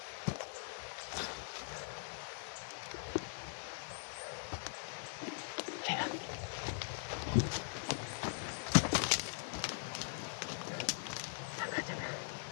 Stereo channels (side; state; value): right; silent; digital silence